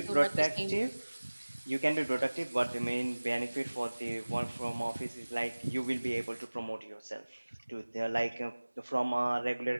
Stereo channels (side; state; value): both; inverted; correlation -1.00